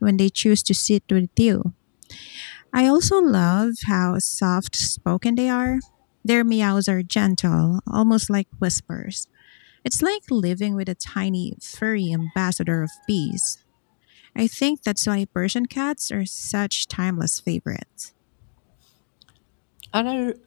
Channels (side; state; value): right; silent; digital silence